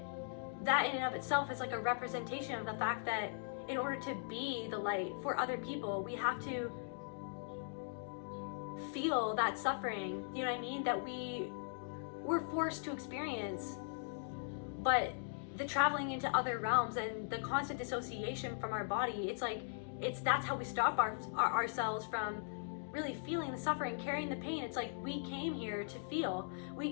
in and of itself is like a representation of the fact that in order to be the light for other people, we have to feel that suffering, you know what I mean, that we're forced to experience. But the traveling into other realms and the constant dissociation from our body, that's how we stop ourselves from really feeling the suffering, carrying the pain. It's like we came here to feel.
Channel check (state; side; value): silent; right; digital silence